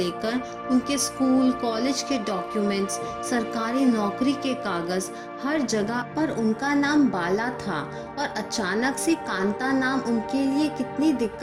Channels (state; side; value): identical; both; correlation 1.00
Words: उनके स्कूल कॉलेज के डॉक्यूमेंट्स, सरकारी नौकरी के कागज, हर जगह पर उनका नाम बाला था, और अचानक से कांता नाम उनके लिए कितनी